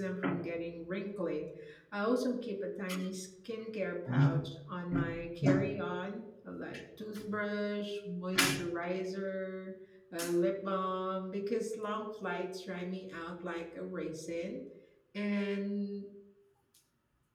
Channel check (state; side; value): identical; both; correlation 1.00